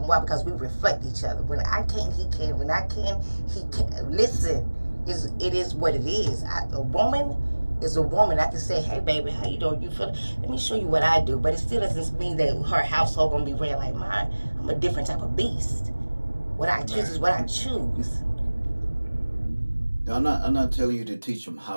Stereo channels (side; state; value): both; inverted; correlation -1.00